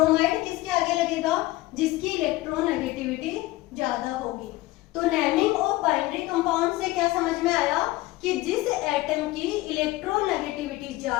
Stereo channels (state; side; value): quieter; right; 18.6 dB